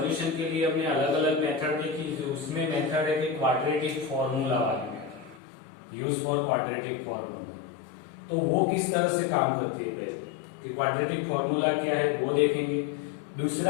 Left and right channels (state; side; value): drops out; right; at 5.4 s